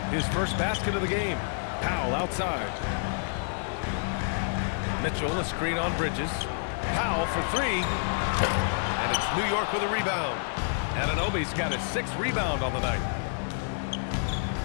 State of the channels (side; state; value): right; silent; digital silence